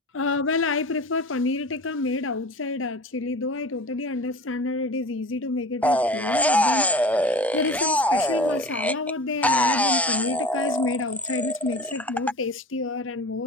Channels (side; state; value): both; normal; correlation 0.36